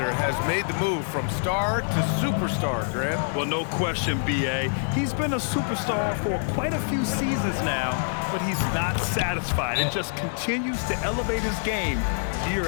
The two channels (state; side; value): silent; right; digital silence